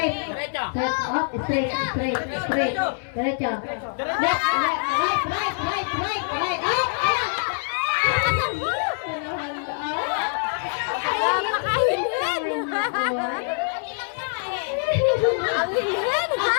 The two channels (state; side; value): silent; right; 62 dB below the other